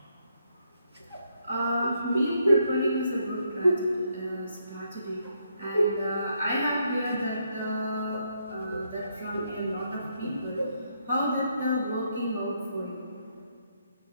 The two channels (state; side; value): inverted; both; correlation -0.76